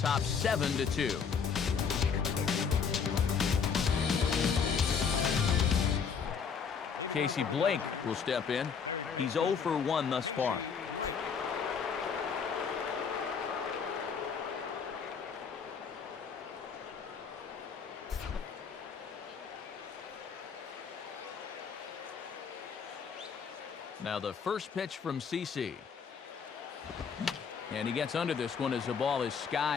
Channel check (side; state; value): right; quieter; 6.3 dB